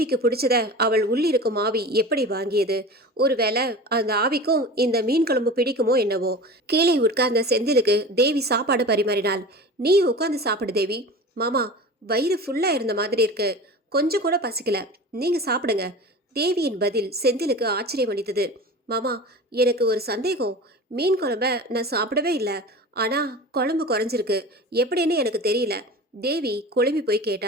பிடிச்சத அவள் உள்ளிருக்கும் ஆவி எப்படி வாங்கியது? ஒருவேளை அந்த ஆவிக்கும் இந்த மீன் குழம்பு பிடிக்குமோ என்னவோ. கீழே உட்கார்ந்த செந்திலுக்கு தேவி சாப்பாடு பரிமாறினாள். நீ உட்கார்ந்து சாப்பிடு தேவி. மாமா, வயிறு ஃபுல்லா இருந்த மாதிரி இருக்கு, கொஞ்சம் கூட பசிக்கல, நீங்க சாப்பிடுங்க. தேவியின் பதில் செந்திலுக்கு ஆச்சரியம் அளித்தது. மாமா, எனக்கு ஒரு சந்தேகம். மீன் குழம்ப நான் சாப்பிடவே இல்லை, ஆனா குழம்பு குறைஞ்சிருக்கு, எப்படின்னு எனக்கு தெரியல. தேவி குழம்பி போய்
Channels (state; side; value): normal; both; correlation 0.34